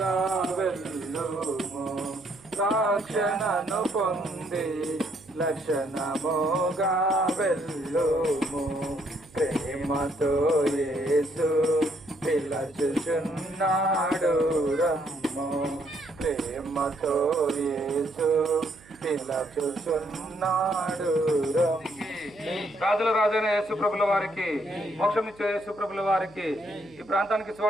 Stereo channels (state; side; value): noise; right; hum, 25 dB below the sound